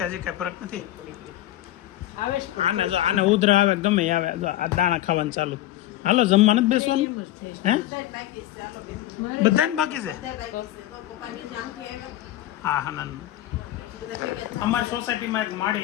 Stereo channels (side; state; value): right; quieter; 14.4 dB